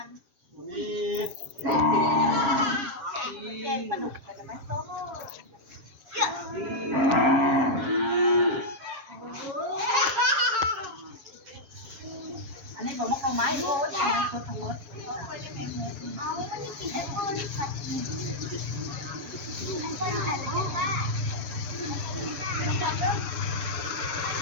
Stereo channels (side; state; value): left; late; 7.3 ms